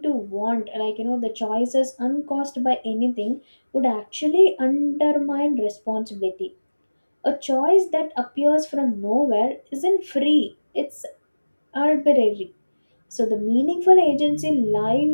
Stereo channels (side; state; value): both; inverted; correlation -1.00